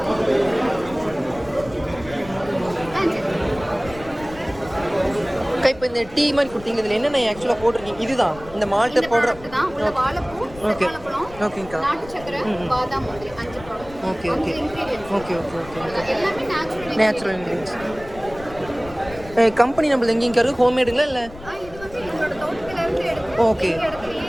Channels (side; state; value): left; noise; rumble, 17 dB below the sound